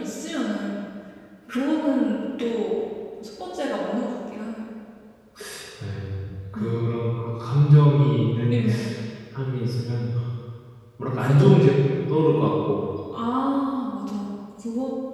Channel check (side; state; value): both; identical; correlation 1.00